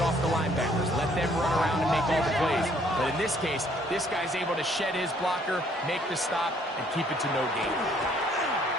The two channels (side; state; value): both; normal; correlation 0.63